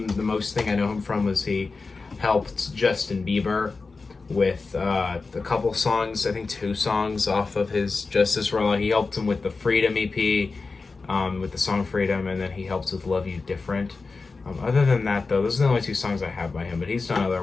the most thing I know him from was he helped Justin Bieber with a couple songs, I think 2 songs off of his Justice rollout. He helped him with the Freedom EP, with the song Freedom, and then he helped with Love You Different. Other than that, though, those are the only 2 songs I have by him, but he's done other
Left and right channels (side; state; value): right; quieter; 4.1 dB